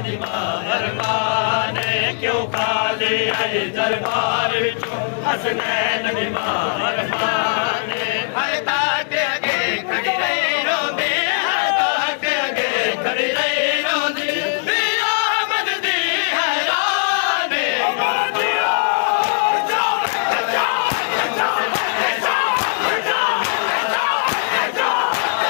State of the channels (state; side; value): silent; right; digital silence